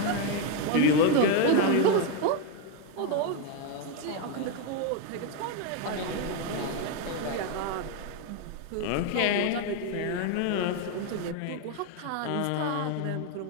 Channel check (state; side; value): different; both; correlation 0.02